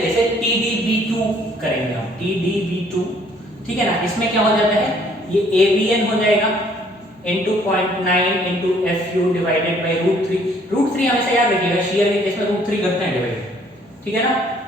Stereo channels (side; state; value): both; normal; correlation 0.61